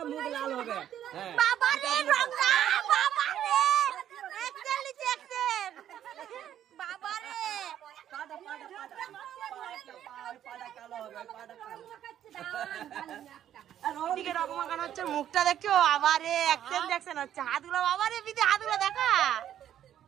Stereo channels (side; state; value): left; quieter; 10.8 dB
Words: মুখ লাল হবে হ্যাঁ বাবা রে রংটা বাবা রে একচুয়ালি দেখছেন বাবা রে পাড়া কালো হবে পাড়া কালো দিকে রং মাখানো হচ্ছে মুখটা দেখছো আবারে অ্যাকশন দেখছেন হচ্ছে হাতগুলো বাবারে বিদে হাতগুলো দেখা